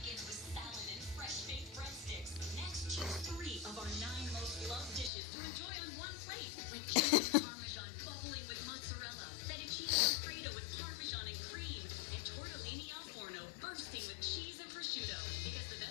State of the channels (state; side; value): drops out; right; at 5.1 s